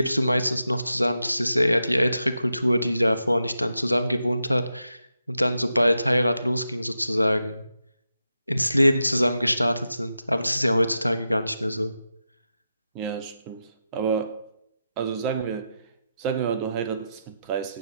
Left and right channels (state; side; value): inverted; both; correlation -0.87